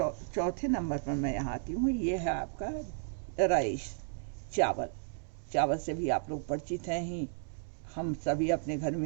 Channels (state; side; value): silent; left; digital silence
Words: चौथे नंबर पर मैं यहाँ आती हूँ। ये है आपका राइस, चावल। चावल से भी आप लोग परिचित हैं ही। हम सभी अपने घर